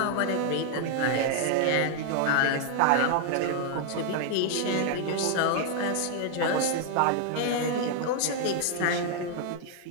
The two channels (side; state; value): both; different; correlation 0.00